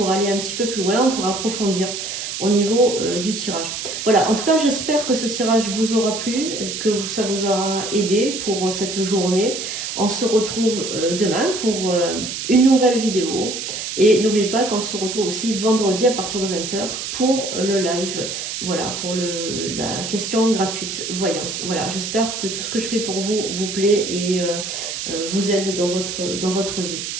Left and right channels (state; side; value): noise; right; hiss, 5 dB below the sound